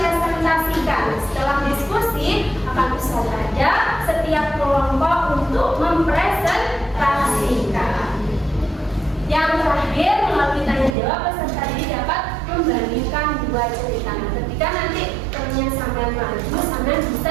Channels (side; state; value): left; drops out; at 11.0 s